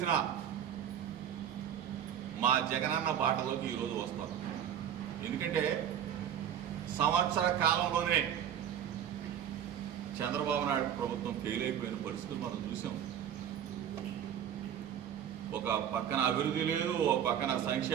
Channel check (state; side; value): quieter; left; 9.5 dB